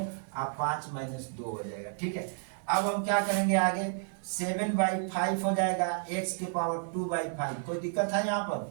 5 - 2 हो जाएगा, ठीक है। अब हम क्या करेंगे आगे, 7/5 हो जाएगा एक्स के पावर 2/5। कोई दिक्कत है यहाँ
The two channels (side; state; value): left; silent; digital silence